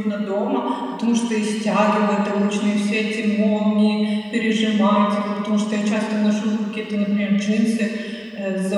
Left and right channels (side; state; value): both; identical; correlation 1.00